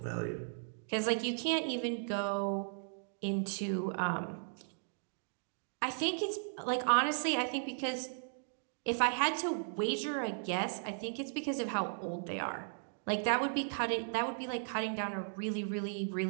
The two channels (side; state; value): left; silent; digital silence